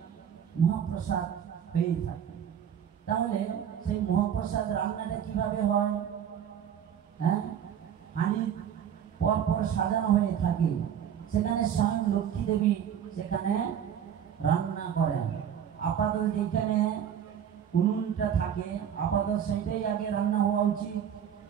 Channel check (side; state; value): left; quieter; 9.0 dB